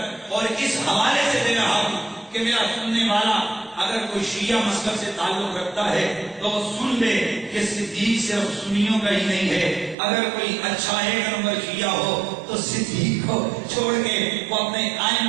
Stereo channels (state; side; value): drops out; left; at 10.0 s